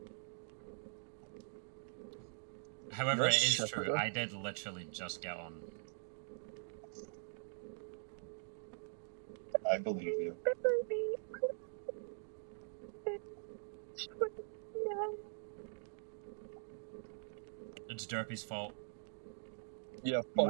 However, it is true, I did literally just get on. I believe you. It's Derpy's fault. Yeah, fuck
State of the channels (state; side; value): silent; left; digital silence